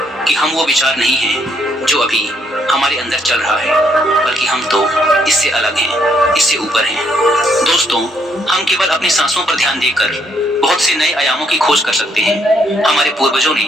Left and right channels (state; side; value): normal; both; correlation 0.72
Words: कि हम वो विचार नहीं हैं जो अभी हमारे अंदर चल रहा है, बल्कि हम तो इससे अलग हैं, इससे ऊपर हैं। दोस्तों, हम केवल अपनी सांसों पर ध्यान देकर बहुत से नए आयामों की खोज कर सकते हैं। हमारे पूर्वजों